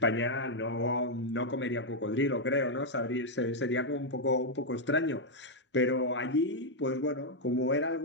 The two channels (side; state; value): both; normal; correlation -0.02